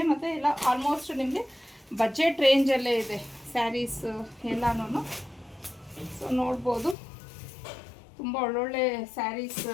ಮತ್ತು ಎಲ್ಲ ಆಲ್ಮೋಸ್ಟ್ ನಿಮಗೆ ಬಜೆಟ್ ರೇಂಜಲ್ಲೇ ಇದೆ ಸ್ಯಾರೀಸ್ ಎಲ್ಲನೂ. ಸೊ ನೋಡ್ಬೋದು ತುಂಬ ಒಳ್ಳೊಳ್ಳೆ ಸ್ಯಾರೀಸ್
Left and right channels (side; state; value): right; drops out; at 7.0 s